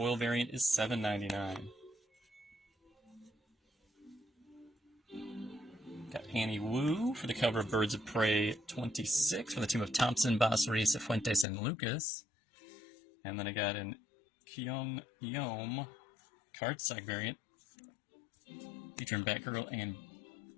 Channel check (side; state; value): right; drops out; at 11.5 s